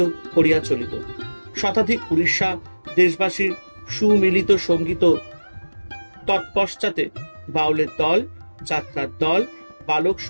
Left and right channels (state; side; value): inverted; both; correlation -1.00